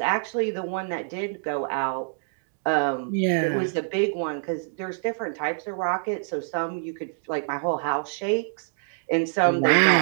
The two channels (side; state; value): left; silent; digital silence